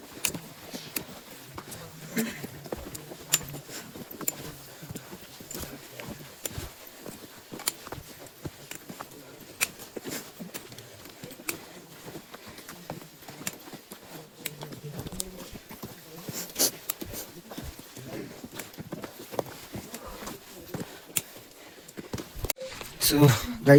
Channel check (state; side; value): identical; both; correlation 1.00